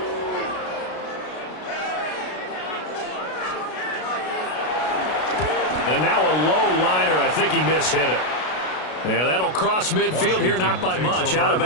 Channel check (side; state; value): right; late; 33 ms